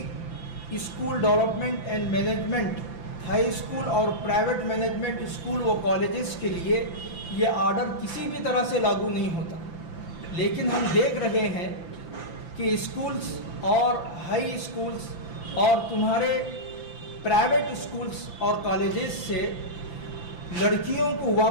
school development and management high school اور پرائیویٹ مینجمنٹ اسکول و کالجز کے لیے یہ آرڈر کسی بھی طرح سے لاگو نہیں ہوتا۔ لیکن ہم دیکھ رہے ہیں کہ اسکولز اور ہائی اسکولز اور تمہارے پرائیویٹ اسکولز اور کالجز سے لڑکیوں کو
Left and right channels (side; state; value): right; late; 5.9 ms